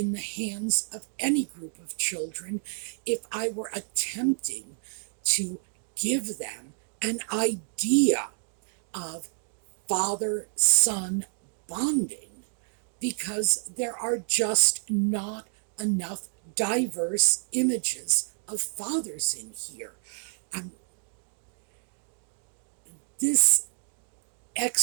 the hands of any group of children if I were attempting to give them an idea of father-son bonding because there are just not enough diverse images of fathers in here. Um, this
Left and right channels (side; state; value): left; silent; 57 dB below the other